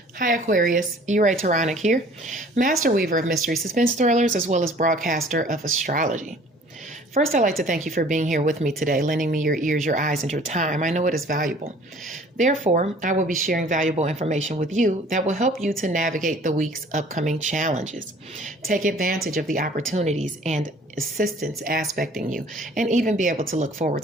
Hi Aquarius, Ray Taronic here, master weaver of mystery suspense thrillers as well as broadcaster of astrology. First, I'd like to thank you for being here with me today, lending me your ears, your eyes, and your time. I know it is valuable. Therefore, I will be sharing valuable information with you that will help you to navigate the week's upcoming challenges. Take advantage of the opportunities and assistance aspecting you, and even be able to look forward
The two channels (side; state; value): both; normal; correlation 0.51